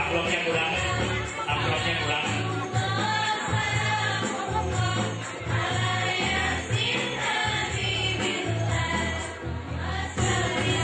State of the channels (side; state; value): both; identical; correlation 1.00